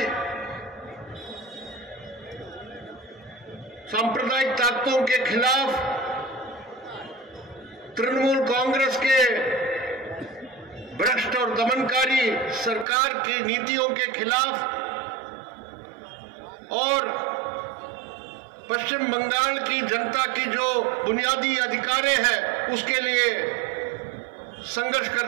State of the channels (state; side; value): drops out; left; at 12.9 s